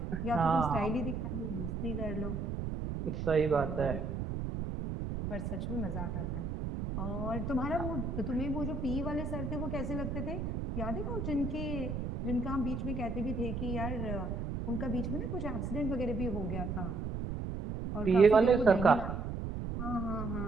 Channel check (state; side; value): noise; right; rumble, 3 dB below the sound